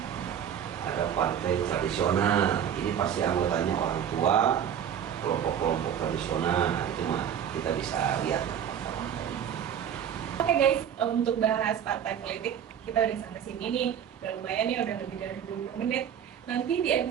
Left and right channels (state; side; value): quieter; left; 9.0 dB